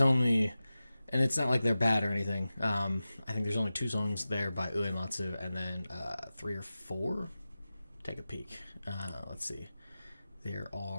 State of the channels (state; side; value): inverted; both; correlation -0.95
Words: and it's not like they're bad or anything. I think there's only 2 songs there by Uematsu, and then 3 or 4. Take a peek. Let's see. There